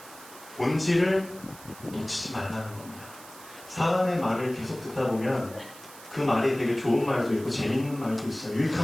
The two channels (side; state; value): right; noise; hiss, 18 dB below the sound